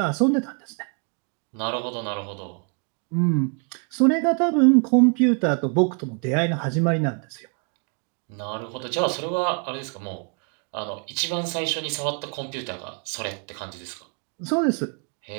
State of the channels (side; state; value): left; quieter; 38.9 dB